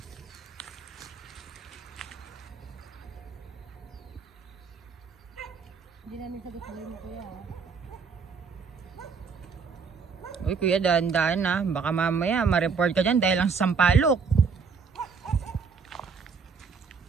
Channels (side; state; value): left; quieter; 5.4 dB